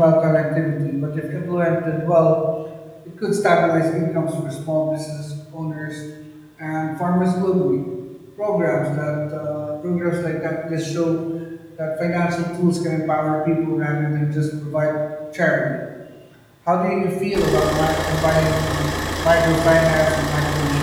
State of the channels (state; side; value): identical; both; correlation 1.00